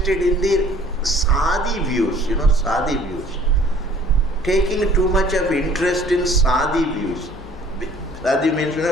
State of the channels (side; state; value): both; normal; correlation 0.54